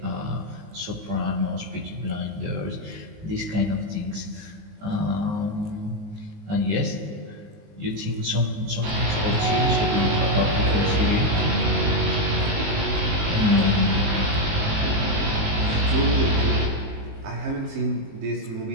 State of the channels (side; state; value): left; late; 19 ms